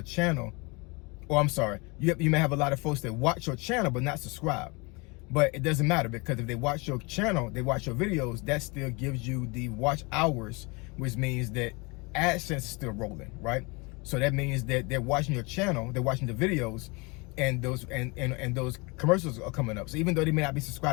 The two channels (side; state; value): right; quieter; 28.0 dB